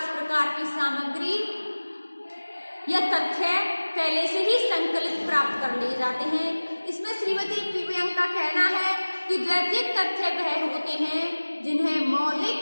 प्रकार की सामग्री या तथ्य पहले से ही संकलित प्राप्त कर लिए जाते हैं। इसमें श्रीमती पीवी यंग का कहना है कि द्वितीयक तथ्य वह होते हैं जिन्हें मौलिक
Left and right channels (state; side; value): inverted; both; correlation -1.00